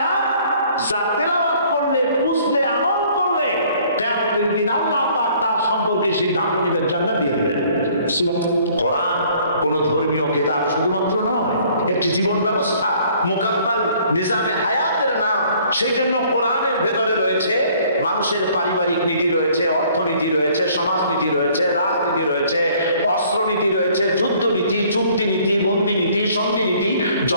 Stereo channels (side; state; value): both; inverted; correlation -0.58